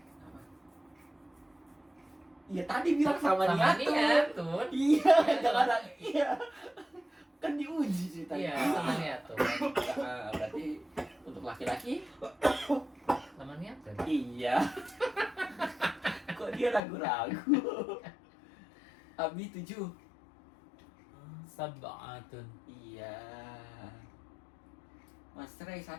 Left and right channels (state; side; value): drops out; right; at 16.8 s